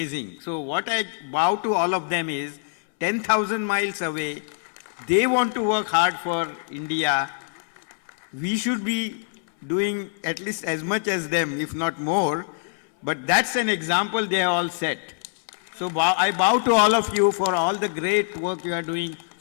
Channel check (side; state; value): right; silent; 62 dB below the other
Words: So what I bow to all of them is 10,000 miles away, they want to work hard for India. We should be doing at least as much as them, if not more. But that's an example they have all set. So I bow to all of you for all the great work you are doing